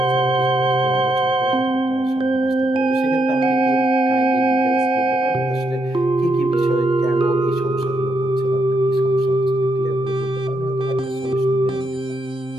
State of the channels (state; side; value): normal; both; correlation 0.80